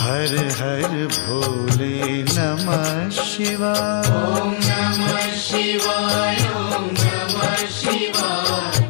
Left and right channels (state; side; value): silent; right; digital silence